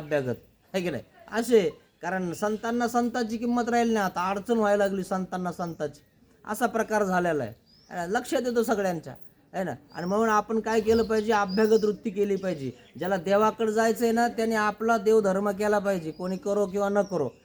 आहे की नाही, असे. कारण संतांना संतांची किंमत राहील नाही, आता अडचण व्हायला लागली संतांना संतांची, असा प्रकार झालेला आहे. लक्षात येतो सगळ्यांच्या, आहे ना. आणि म्हणून आपण काय केलं पाहिजे, अभ्यागत वृत्ती केली पाहिजे. ज्याला देवाकडे जायचं आहे ना त्याने आपला देवधर्म केला पाहिजे, कोणी करो किंवा न करो,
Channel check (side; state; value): both; identical; correlation 1.00